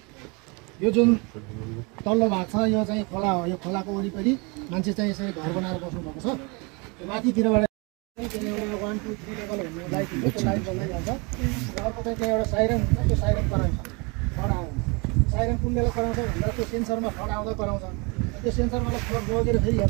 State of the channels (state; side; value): quieter; left; 29.8 dB